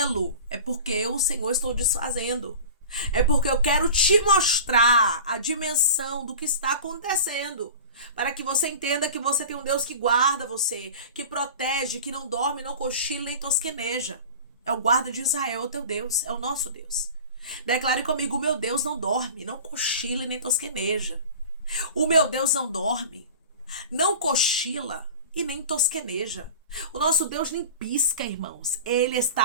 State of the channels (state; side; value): inverted; both; correlation -0.36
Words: é porque eu, o Senhor, estou desfazendo. É porque eu quero te mostrar a dimensão do que está acontecendo, para que você entenda que você tem um Deus que guarda você, que protege, que não dorme, não cochila nem tosqueneja. É o guarda de Israel, o teu Deus, é o nosso Deus. Declare comigo: o meu Deus não dorme, não cochila e nem tosqueneja. O meu Deus não dorme, não cochila e nem tosqueneja. O nosso Deus nem pisca, irmãos. Ele